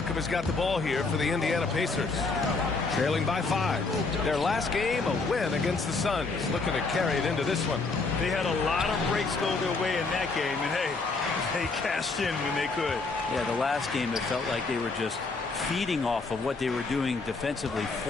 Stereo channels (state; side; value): quieter; right; 3.9 dB